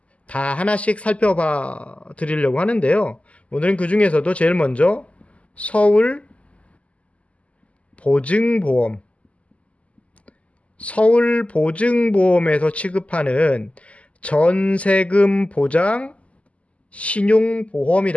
다 하나씩 살펴봐 드리려고 하는데요. 오늘은 그 중에서도 제일 먼저 서울보증보험에서 취급하는 전세금 보장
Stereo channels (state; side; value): late; right; 0.064 ms